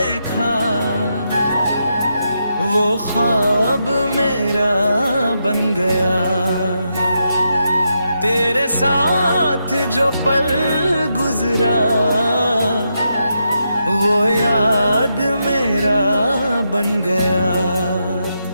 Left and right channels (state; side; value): inverted; both; correlation -0.83